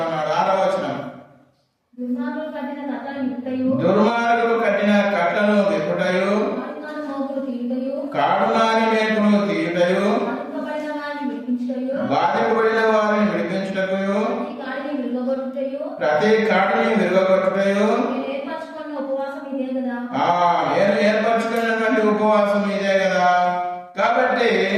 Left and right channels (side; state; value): both; identical; correlation 1.00